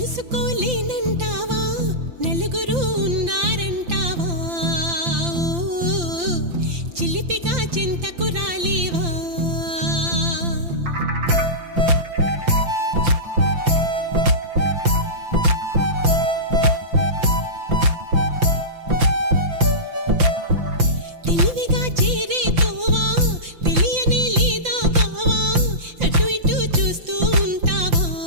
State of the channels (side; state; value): left; late; 5.8 ms